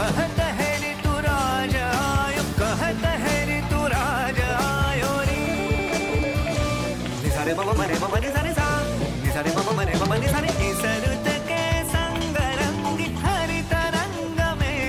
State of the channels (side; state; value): both; identical; correlation 1.00